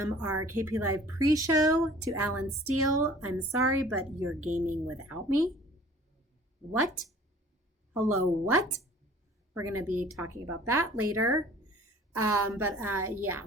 our KP Live pre show to Alan Steele. I'm sorry, but you're gaming without me. What? Hello, what? We're going to be talking about that later. Yeah.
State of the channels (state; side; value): normal; both; correlation 0.50